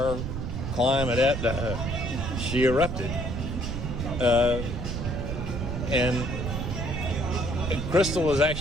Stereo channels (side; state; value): right; noise; rumble, 4 dB below the sound